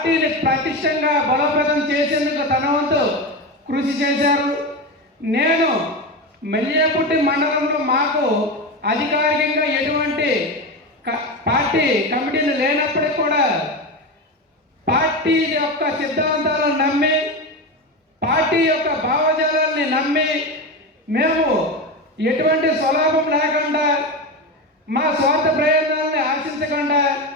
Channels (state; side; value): normal; both; correlation 0.19